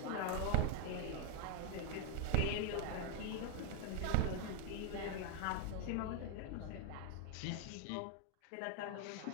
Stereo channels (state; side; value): different; both; correlation 0.00